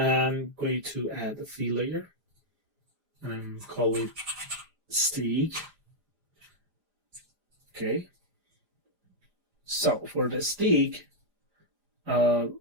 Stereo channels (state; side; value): late; left; 4.9 ms